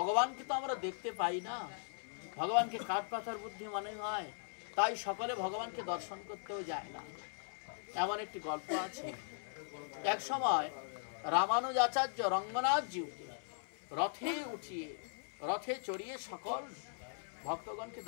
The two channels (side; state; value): right; silent; 52 dB below the other